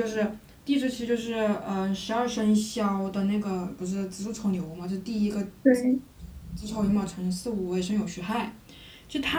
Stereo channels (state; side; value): identical; both; correlation 1.00